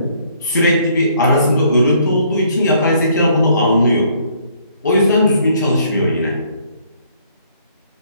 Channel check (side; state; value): both; inverted; correlation -0.64